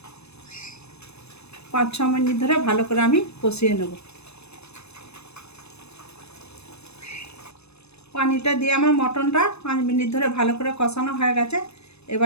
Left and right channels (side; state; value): right; late; 0.80 ms